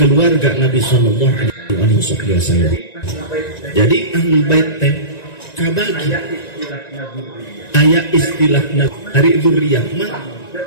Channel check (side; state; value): right; late; 1.9 ms